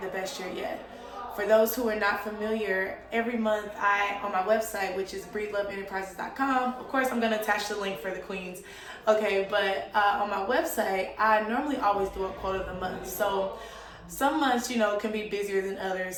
the best year yet. For those who are not familiar, every month on my website, which is breedloveenterprises.com, of course I'm going to attach the link for the queens, okay, but on my website, I normally always do a quote of the month. So some months, can be busier than others,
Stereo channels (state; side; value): identical; both; correlation 1.00